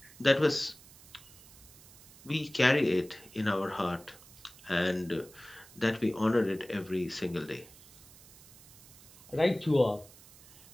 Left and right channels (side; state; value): right; noise; hiss, 21 dB below the sound